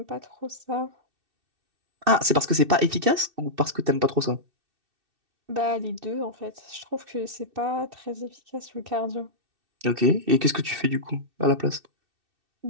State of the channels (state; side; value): late; left; 2.6 ms